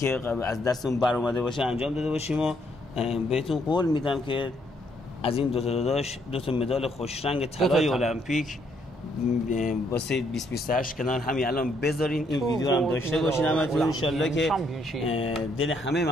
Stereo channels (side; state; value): both; normal; correlation 0.71